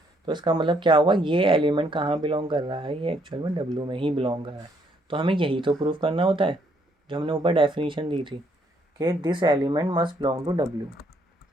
तो इसका मतलब क्या हुआ, ये एलिमेंट कहाँ बिलोंग कर रहा है, ये एक्चुअल में W में ही बिलोंग कर रहा है। तो हमें यही तो प्रूफ करना होता है जो हमने ऊपर डेफिनेशन दी थी कि this element must belong to W।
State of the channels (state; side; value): normal; both; correlation 0.70